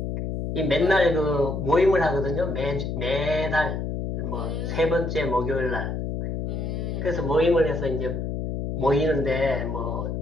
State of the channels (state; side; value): noise; left; hum, 3 dB below the sound